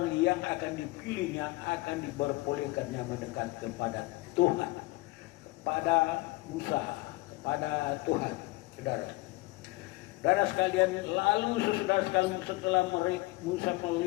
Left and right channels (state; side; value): quieter; right; 21.5 dB